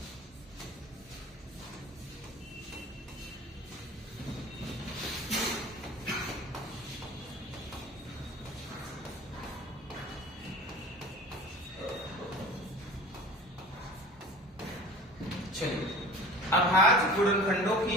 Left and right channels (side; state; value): both; normal; correlation 0.40